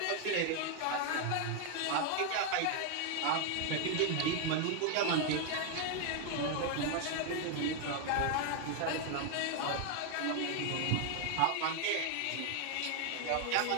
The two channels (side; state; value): both; different; correlation 0.00